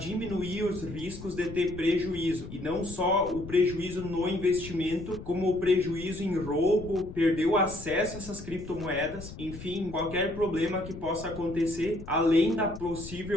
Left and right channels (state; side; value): noise; left; rumble, 13 dB below the sound